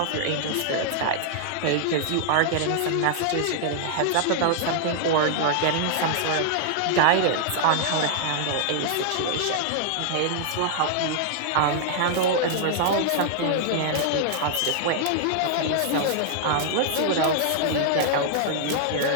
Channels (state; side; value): different; both; correlation -0.01